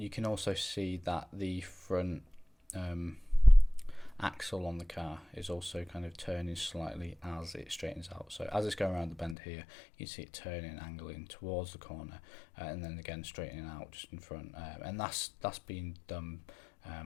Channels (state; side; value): drops out; right; at 9.3 s